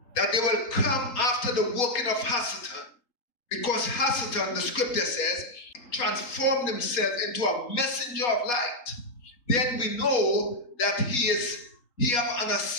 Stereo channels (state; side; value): late; right; 3.8 ms